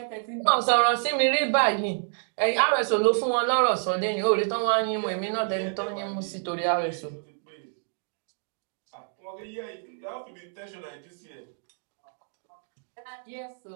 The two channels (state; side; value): silent; left; digital silence